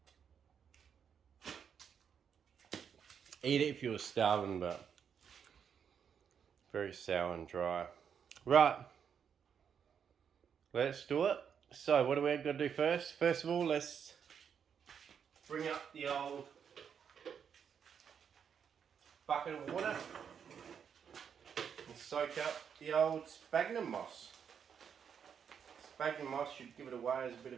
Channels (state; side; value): quieter; left; 7.5 dB